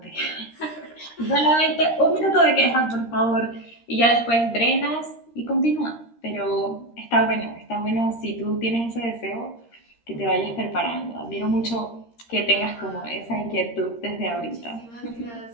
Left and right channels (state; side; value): late; right; 13 ms